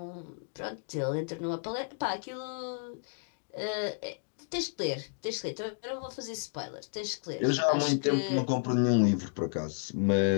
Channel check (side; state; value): right; silent; digital silence